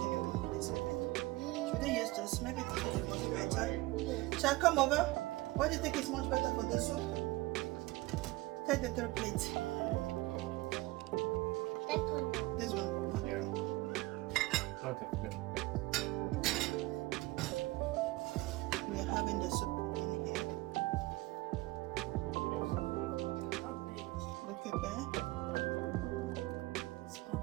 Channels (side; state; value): left; quieter; 20.4 dB